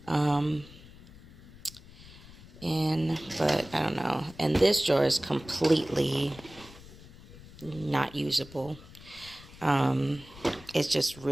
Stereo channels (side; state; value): left; noise; rumble, 19 dB below the sound